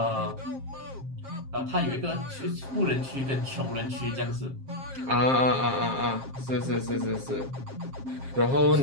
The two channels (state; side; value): late; left; 7.5 ms